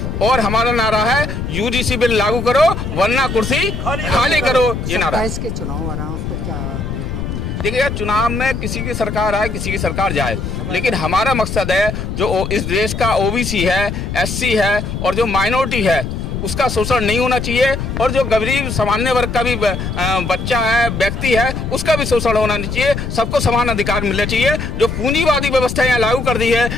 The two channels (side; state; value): left; noise; rumble, 4 dB below the sound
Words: और हमारा नारा है यूजीसी बिल लागू करो वरना कुर्सी खाली करो। ये नारा है। के चुनाव आ रहा है, उस पर क्या देखने को मिलेगा? देखिए यार, चुनाव में किसी की सरकार आए, किसी की सरकार जाए, लेकिन हमारा मकसद है जो इस देश का ओबीसी है, एससी है और जो माइनॉरिटी है उसका शोषण नहीं होना चाहिए, और जो गरीब सामान्य वर्ग का भी बच्चा है, व्यक्ति है, उसका भी शोषण होना नहीं चाहिए। सबको समान अधिकार मिलना चाहिए। जो पूंजीवादी व्यवस्था यहाँ लागू कर दी है,